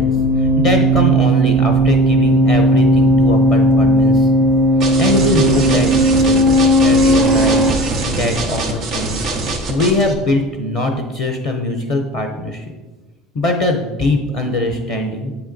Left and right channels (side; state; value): both; normal; correlation 0.37